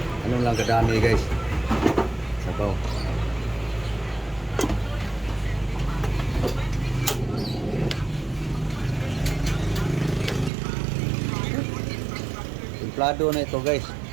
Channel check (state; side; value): drops out; left; at 10.5 s